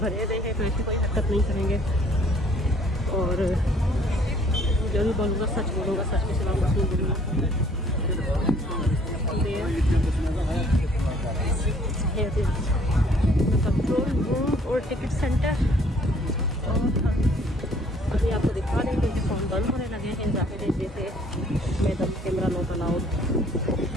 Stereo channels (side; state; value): both; normal; correlation 0.59